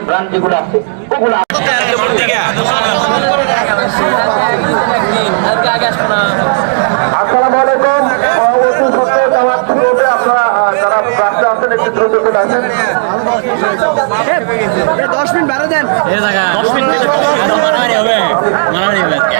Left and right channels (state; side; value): silent; left; digital silence